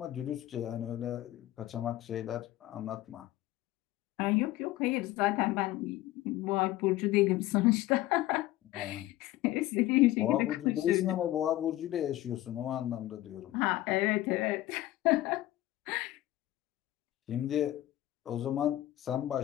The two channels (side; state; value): right; quieter; 15.5 dB